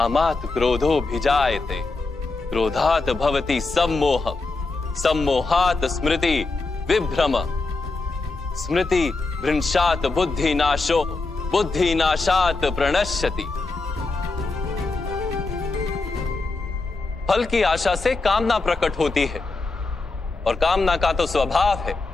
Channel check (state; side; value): quieter; right; 3.6 dB